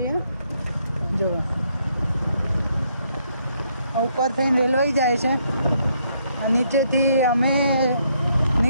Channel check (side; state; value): both; inverted; correlation -0.72